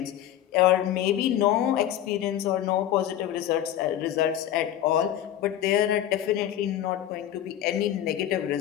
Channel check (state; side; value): quieter; right; 11.6 dB